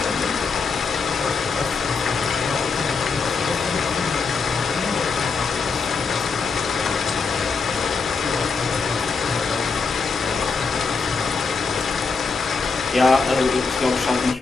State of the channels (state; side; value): quieter; right; 4.8 dB